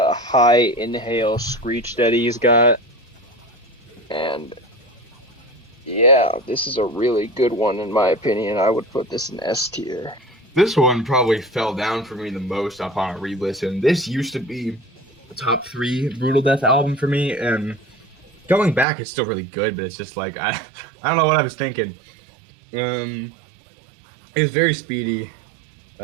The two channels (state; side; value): drops out; left; at 18.9 s